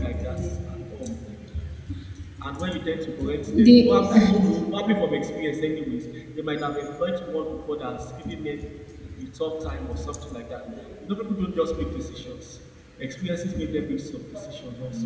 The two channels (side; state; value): both; identical; correlation 1.00